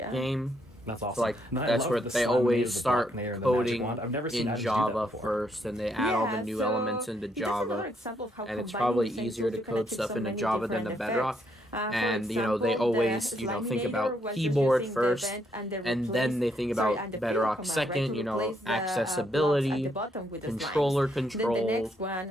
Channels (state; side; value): normal; both; correlation 0.74